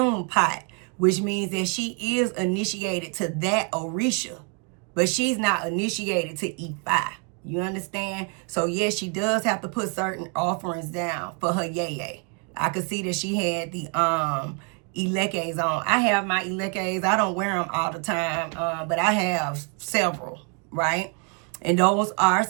pot, which means that she is initiated to that Orisha, but she's not initiated to E5. You understand? So yes, she does have to put certain offerings down for her yeye. I could see that she had the Ilekes on. I have my Ilekes. I don't wear them all the time, but I have several, right? And those are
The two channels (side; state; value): left; quieter; 36.8 dB